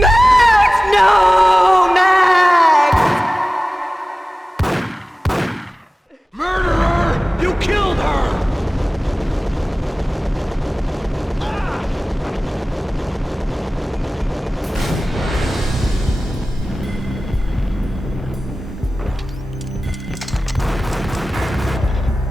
No! Max! Murderer! You killed her!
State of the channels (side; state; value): both; normal; correlation 0.97